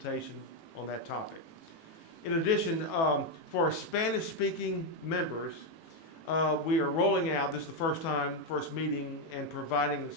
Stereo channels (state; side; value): late; right; 18 ms